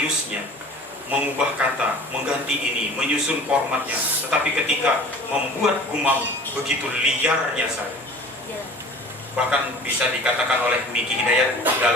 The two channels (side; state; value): both; normal; correlation 0.44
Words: mengubah kata, mengganti ini, menyusun formatnya. Tetapi ketika membuat gumam begitu liarnya saya. Bahkan bisa dikatakan oleh Miki Hidayat